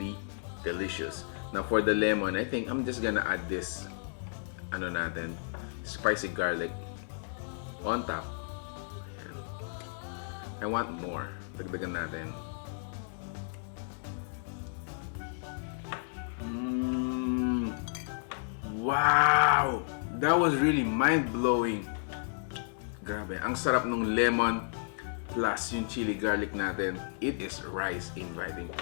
delicious. Now for the lemon, I think I'm just gonna add this, spicy garlic on top. I want more. Dagdagan natin. Wow! That was really mind-blowing. Grabe, ang sarap ng lemon plus yung chili garlic natin. It is rice inviting.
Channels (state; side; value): silent; right; digital silence